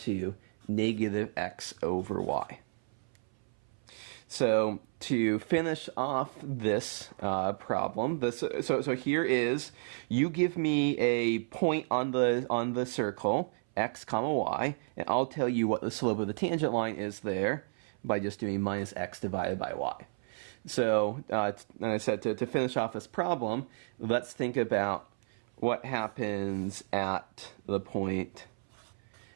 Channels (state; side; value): silent; left; 56 dB below the other